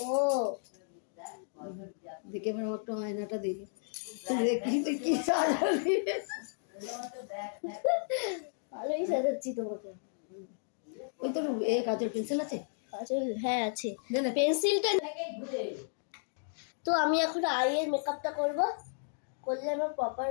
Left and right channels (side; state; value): right; silent; digital silence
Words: ও দেখে আমার একটা আয়নাটা দিলি, দেখি তুই কি সাজালি। ভালোই সাজাচ্ছি তোমাকে। ওই তোর এ কাজের পেন্সিল আছে? কাজল হ্যাঁ আছে, দে না। পেন্সিলটা। তো আমি এখন আইয়ের মেকআপটা করব, করলে আমি প্রপার